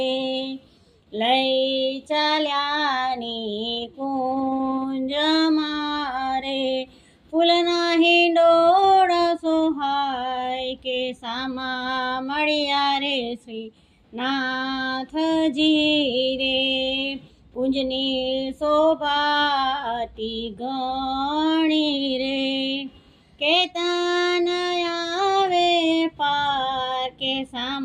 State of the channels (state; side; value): identical; both; correlation 1.00